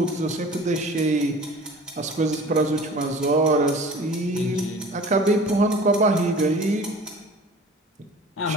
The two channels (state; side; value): normal; both; correlation 0.43